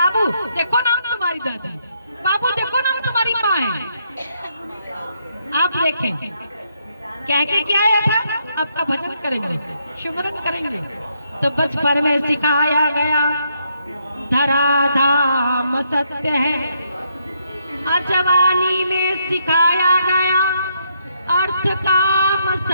देखो ना हम तुम्हारी दादी, बाबू देखो ना हम तुम्हारी माँ है। आप देखें कह के क्या आया था, आपका भजन करेंगे, सुमिरन करेंगे। तो बचपन में सिखाया गया धराधाम सत्य है, जवानी में सिखाया गया अर्थ काम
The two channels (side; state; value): both; inverted; correlation -0.75